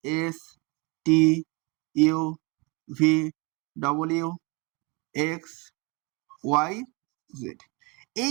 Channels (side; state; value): left; quieter; 26.9 dB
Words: s t u v ডব্লিউ এক্স ওয়াই জেড,